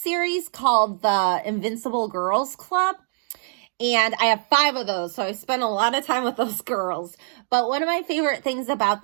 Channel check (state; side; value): silent; left; digital silence